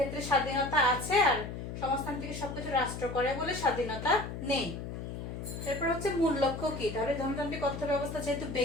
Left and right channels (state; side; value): noise; left; hum, 7 dB below the sound